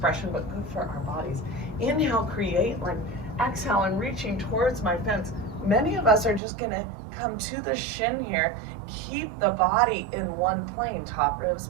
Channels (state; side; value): drops out; left; at 6.4 s